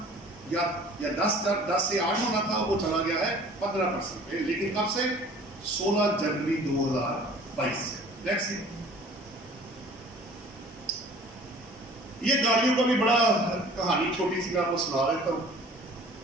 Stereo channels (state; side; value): normal; both; correlation 0.48